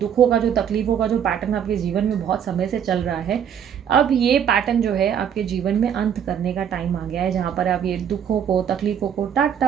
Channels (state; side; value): quieter; left; 8.5 dB